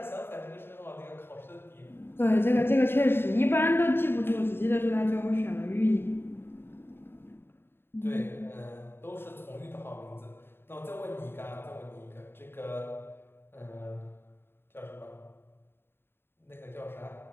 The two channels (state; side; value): late; right; 0.11 ms